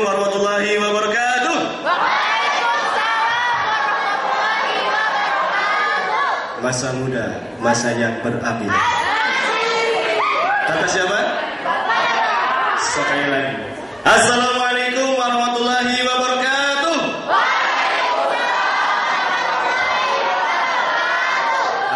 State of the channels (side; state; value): both; identical; correlation 1.00